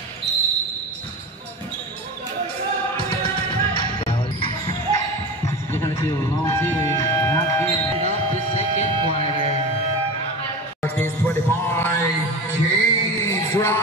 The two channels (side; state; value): both; normal; correlation 0.28